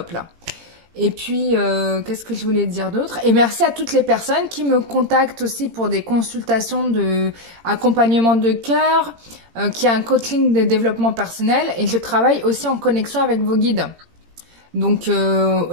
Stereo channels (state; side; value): late; left; 18 ms